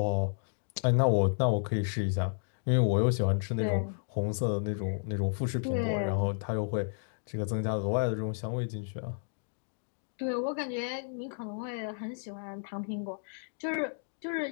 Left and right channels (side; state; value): right; silent; digital silence